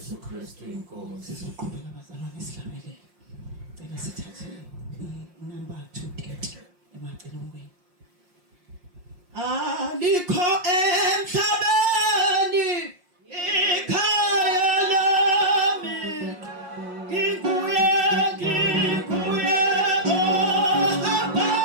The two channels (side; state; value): left; late; 5.6 ms